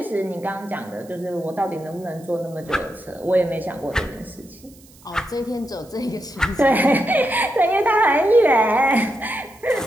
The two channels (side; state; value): right; noise; hiss, 26 dB below the sound